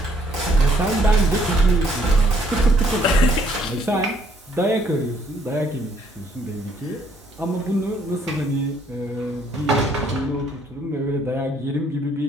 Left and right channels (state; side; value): normal; both; correlation 0.66